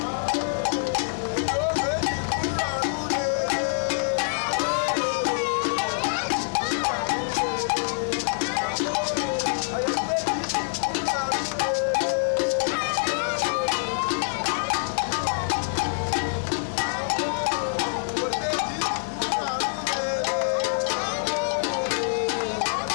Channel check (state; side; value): silent; right; digital silence